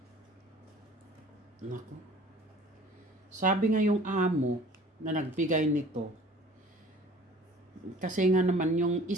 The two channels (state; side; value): normal; both; correlation 0.48